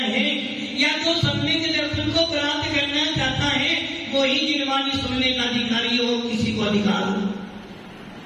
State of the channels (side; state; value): both; identical; correlation 1.00